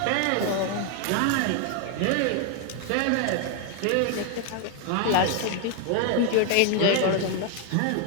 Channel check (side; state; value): both; different; correlation 0.01